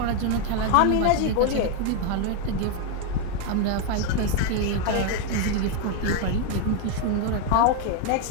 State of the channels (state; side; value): different; both; correlation 0.01